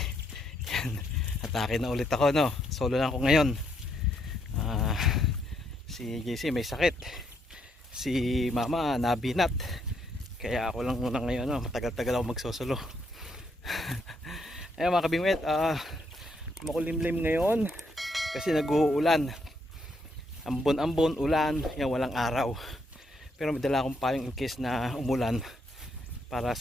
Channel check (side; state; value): both; normal; correlation 0.75